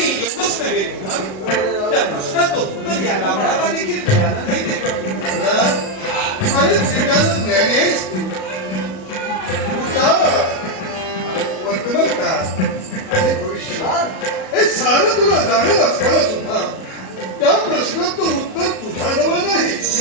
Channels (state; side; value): late; right; 37 ms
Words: एवढंच नव्हे मग त्या प्रश्नाचं उत्तर या गावळाला देखील मिळालं नाही. वर्तमान काळ आणि भविष्य हे सारं तुला जाणत असताना सुद्धा त्या प्रश्नाचं उत्तर तुझ्याजवळ नाही.